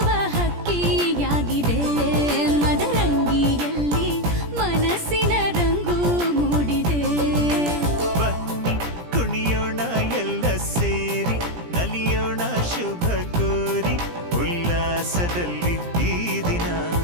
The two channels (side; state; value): left; late; 17 ms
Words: ಹಕ್ಕಿಯಾಗಿದೆ. ಮದರಂಗಿಯಲ್ಲಿ ಮನಸ್ಸಿನ ರಂಗು ಮೂಡಿದೆ. ಬನ್ನಿ ಕುಣಿಯೋಣ ಎಲ್ಲ ಸೇರಿ ನಲಿಯೋಣ ಶುಭ ಕೋರಿ ಉಲ್ಲಾಸದಲ್ಲಿ ಈ ದಿನ.